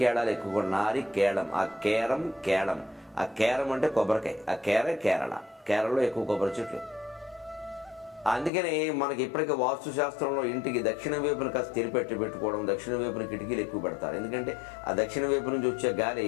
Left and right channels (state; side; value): drops out; right; at 8.5 s